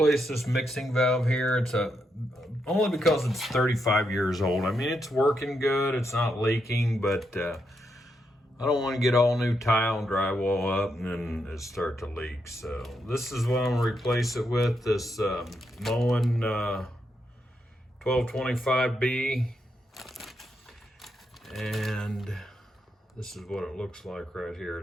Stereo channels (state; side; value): normal; both; correlation 0.82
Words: this mixing valve here. It's only because it's 35 years old. I mean, it's working good. It's not leaking, but I don't want to get all new tile and drywall up and then it start to leak. So this is what I'm gonna replace it with. This Moen 1225B, and this is what it looks like right here.